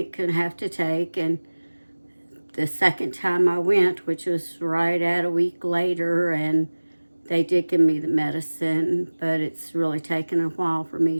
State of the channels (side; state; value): both; inverted; correlation -1.00